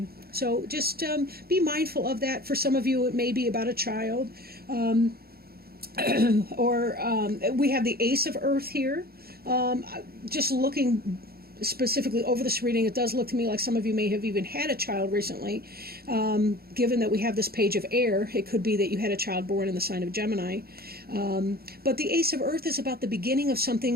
just be mindful of that. For some of you, it may be about a child. Or we have the Ace of Earth here. Just looking specifically over this reading, it does look to me like some of you may have even had a child recently. Given that we have this Page of Air, it could be that you had a child born in the sign of Gemini. But the Ace of Earth is about the beginning of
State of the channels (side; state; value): left; late; 0.45 ms